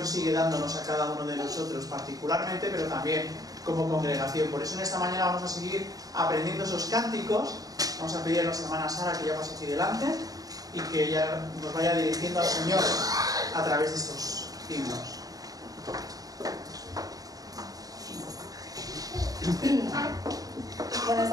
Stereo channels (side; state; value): left; late; 0.18 ms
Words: sigue dándonos a cada uno de nosotros, particularmente, pero también como congregación. Por eso en esta mañana vamos a seguir aprendiendo esos cánticos. Vamos a pedir a nuestra hermana Sara que ya pase aquí delante y que ella nos vaya dirigiendo al Señor a través de estos himnos.